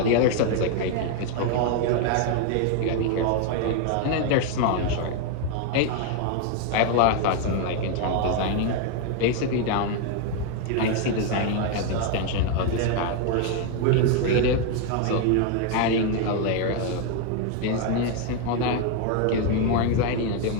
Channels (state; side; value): different; both; correlation 0.01